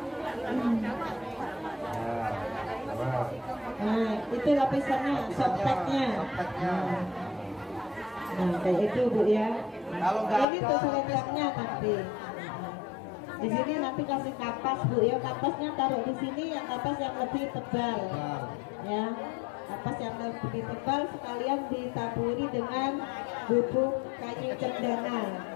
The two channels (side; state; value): right; drops out; at 10.5 s